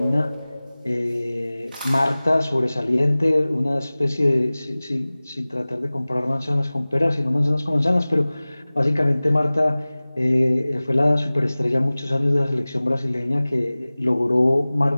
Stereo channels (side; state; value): both; inverted; correlation -0.99